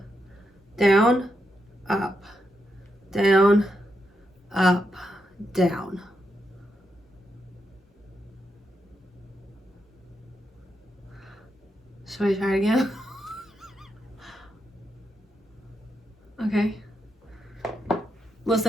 Down, up, down, up, down. Should I try it again? Okay.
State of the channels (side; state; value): both; normal; correlation 0.83